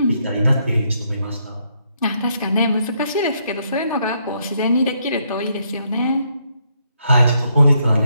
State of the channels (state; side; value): inverted; both; correlation -0.75